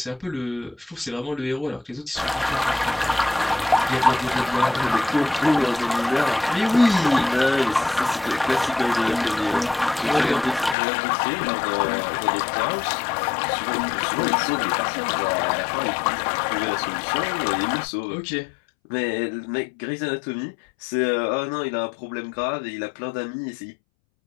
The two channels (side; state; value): right; drops out; at 10.8 s